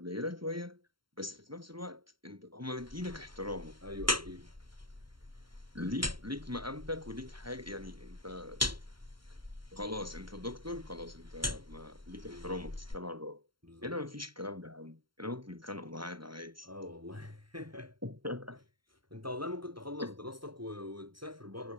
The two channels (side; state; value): left; late; 0.73 ms